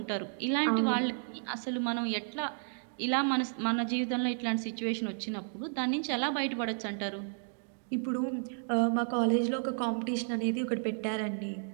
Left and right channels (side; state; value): left; silent; digital silence